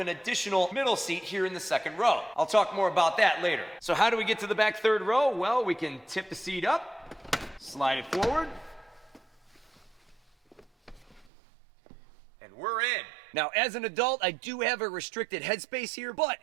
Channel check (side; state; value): left; drops out; at 11.3 s